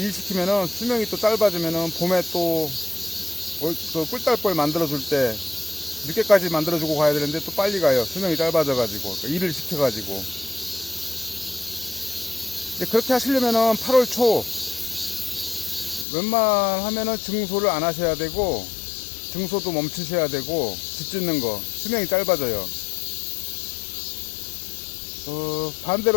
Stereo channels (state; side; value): drops out; right; at 16.1 s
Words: 수명이 또 짧아지면은 봄에 또 그 꿀달벌 만들어줄 때 늦게까지 만들어주고 가야 되는데 또 빨리 가요. 수명이 짧아져가지고. 일을 시켜가지고. 근데 그렇게 하시려면은 8월 초 웬만하면은 증소를 안 하셔야 되고, 증소도 멈추셔야 되고, 집 짓는 거 수명이 짧아져요.